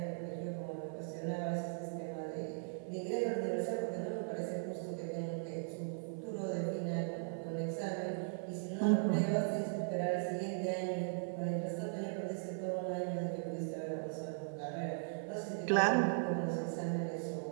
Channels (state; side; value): silent; left; 52 dB below the other